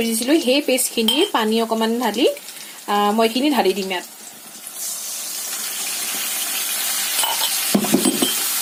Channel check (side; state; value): both; identical; correlation 1.00